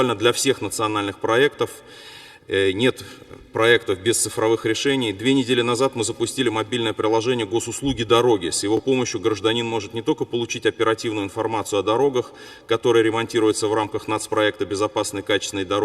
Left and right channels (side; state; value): both; identical; correlation 1.00